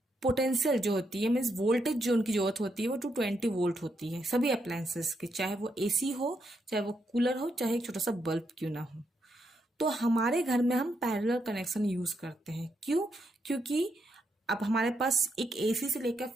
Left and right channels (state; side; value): normal; both; correlation 0.80